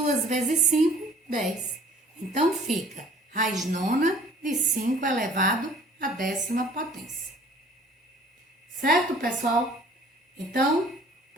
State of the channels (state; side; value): normal; both; correlation 0.52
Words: vezes 5, 10. Então, fica raiz nona de 5 elevado à 10ª potência. Certo, pessoal? Então,